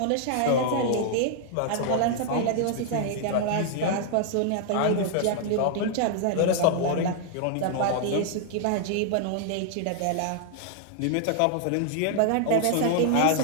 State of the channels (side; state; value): both; different; correlation 0.00